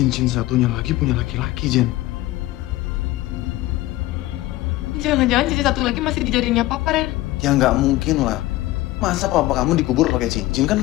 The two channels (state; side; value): quieter; right; 17.2 dB